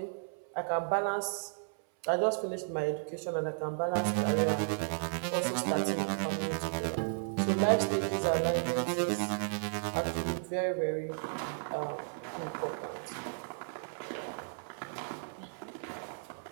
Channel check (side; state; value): left; silent; 55 dB below the other